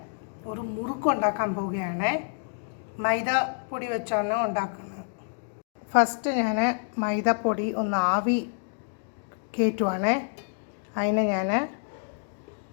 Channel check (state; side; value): silent; right; digital silence